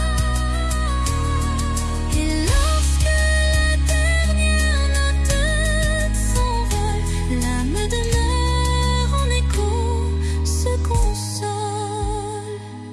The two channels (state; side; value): identical; both; correlation 1.00